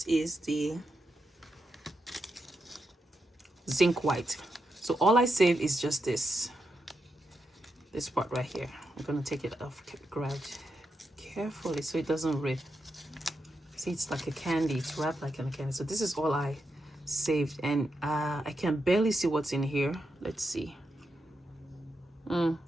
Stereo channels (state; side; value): normal; both; correlation 0.85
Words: is the zinc white. So all I save is just this part right here. I'm gonna take it off, grab carefully so it doesn't rip. See, it's like a candy. It's wrapped like a candy. So this is all I saved, and I can barely see what's in here. Let's see.